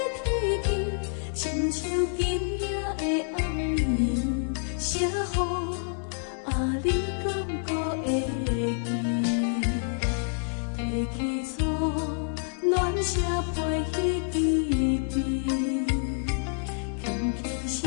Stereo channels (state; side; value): silent; right; digital silence